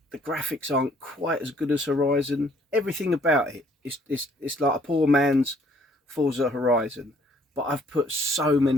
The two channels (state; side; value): normal; both; correlation 0.62